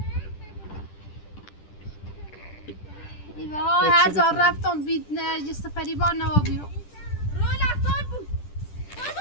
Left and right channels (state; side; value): late; right; 10 ms